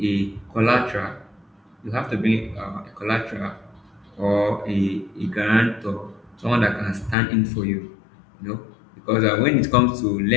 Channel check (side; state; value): right; drops out; at 7.2 s